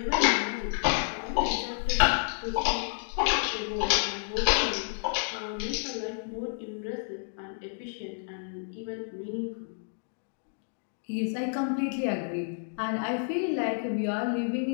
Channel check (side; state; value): right; silent; digital silence